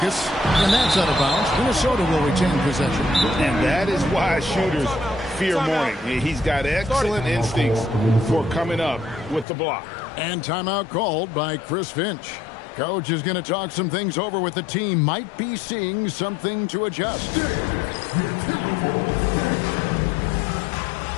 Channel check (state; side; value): drops out; right; at 9.5 s